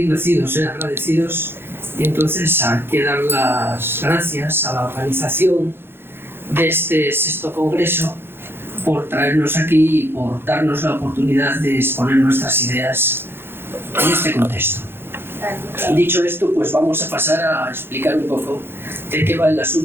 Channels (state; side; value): late; left; 0.11 ms